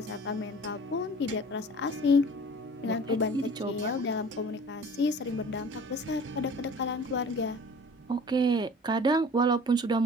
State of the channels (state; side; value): normal; both; correlation 0.45